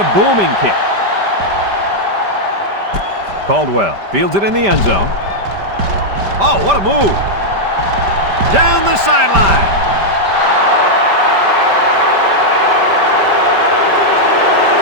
booming kick. Caldwell fields it in the end zone. Oh, what a move! Down the sideline.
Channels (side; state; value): left; late; 5.1 ms